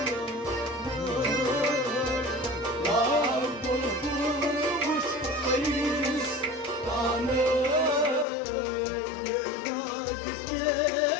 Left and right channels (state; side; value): drops out; right; at 8.2 s